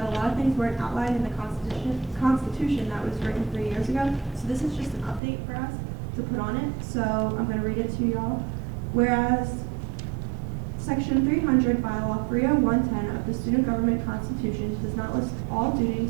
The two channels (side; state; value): left; drops out; at 5.2 s